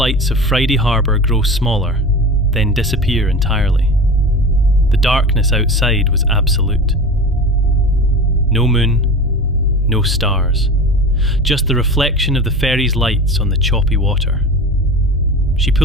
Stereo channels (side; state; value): both; normal; correlation 0.31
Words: of Friday Harbour grow smaller, then disappear entirely. The darkness outside was absolute. No moon, no stars, just the reflection of the ferry's lights on the choppy water. She